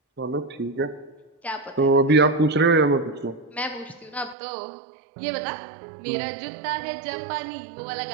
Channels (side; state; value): left; drops out; at 4.4 s